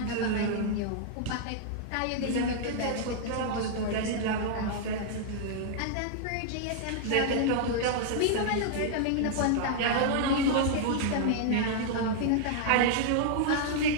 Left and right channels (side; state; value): both; different; correlation -0.01